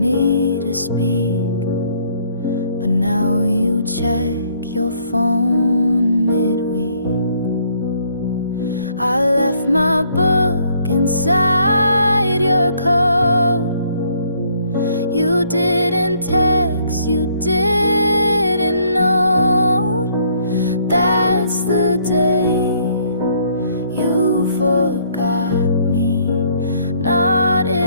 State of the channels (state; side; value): inverted; both; correlation -0.65